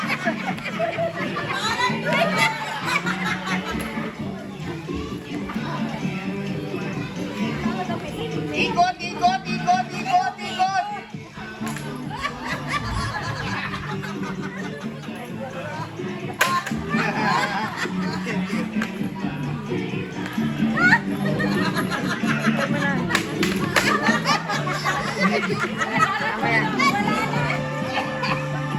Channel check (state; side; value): identical; both; correlation 1.00